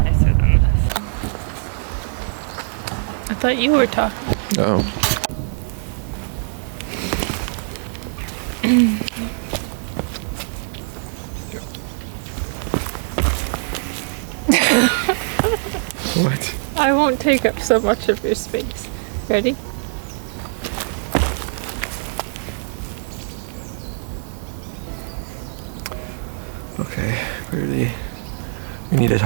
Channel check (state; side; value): silent; left; digital silence